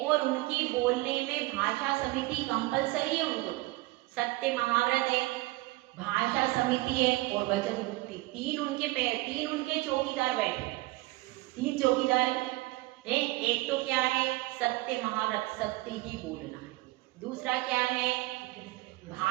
उनकी बोलने में भाषा समिति कंपलसरी है। उनको सत्य महाव्रत है, भाषा समिति है और वचन मुक्ति, तीन उनके चौकीदार बैठे, 3 चौकीदार है। एक तो क्या है, सत्य महाव्रत, सत्य ही बोलना है। दूसरा क्या है,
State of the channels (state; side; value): quieter; left; 20.8 dB